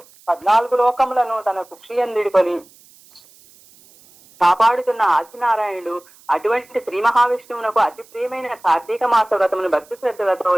14 లోకములను తన కుక్షియందుడికొని కాపాడుతున్న ఆదినారాయణుడు. అటువంటి శ్రీ మహావిష్ణువునకు అతి ప్రియమైన కార్తీక మాస వ్రతమును భక్తి శ్రద్ధలతో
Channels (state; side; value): noise; right; hiss, 27 dB below the sound